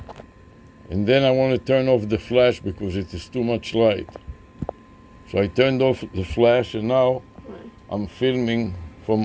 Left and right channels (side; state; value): both; identical; correlation 1.00